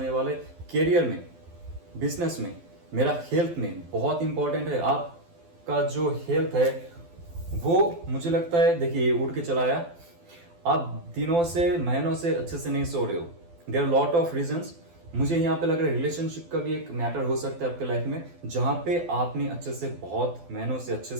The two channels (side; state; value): left; late; 12 ms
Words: वाले, करियर में, बिजनेस में, मेरा हेल्थ में बहुत इंपॉर्टेंट है। आपका जो हेल्थ है वो मुझे लगता है, देखिए उड़ के चला आया, आप दिनों से महीनों से अच्छे से नहीं सो रहे हो। There are lot of reasons. मुझे यहाँ पे लग रहा है रिलेशनशिप का भी एक मैटर हो सकता है आपके लाइफ में, जहां पे आपने अच्छे से बहुत महीनों से अच्छे